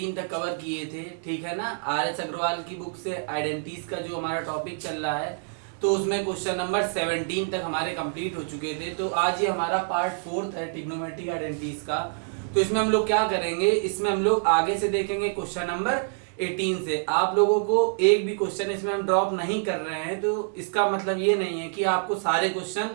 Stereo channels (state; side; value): silent; left; digital silence